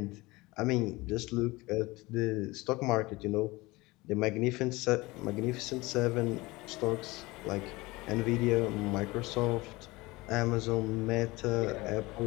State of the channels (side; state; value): right; quieter; 21.6 dB